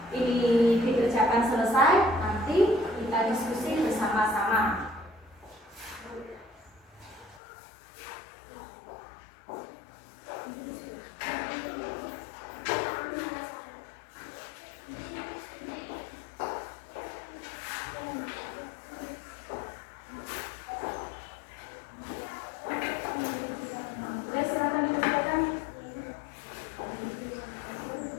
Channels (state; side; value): drops out; right; at 7.4 s